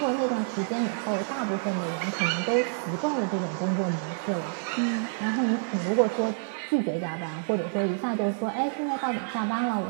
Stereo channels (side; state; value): left; silent; 59 dB below the other